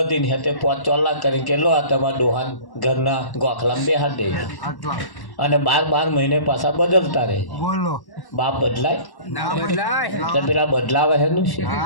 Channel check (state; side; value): late; right; 1.1 ms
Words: તે 5 ચોલા કરી કે લો આ તમારા ડોહા ઘરના ગોખલામાં બેહાડી દે અને 12 મહિને પાછા બદલતા રહે. બાપ બદલાય તો પેલા બદલાવે એનું છે.